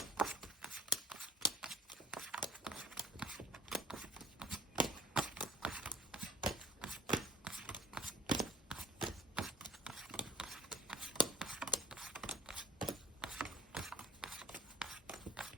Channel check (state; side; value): normal; both; correlation 0.44